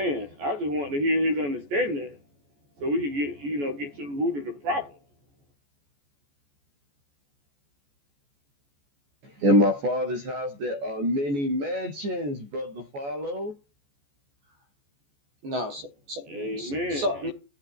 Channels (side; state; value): left; late; 14 ms